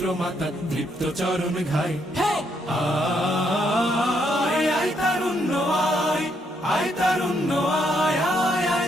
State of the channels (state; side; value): normal; both; correlation 0.74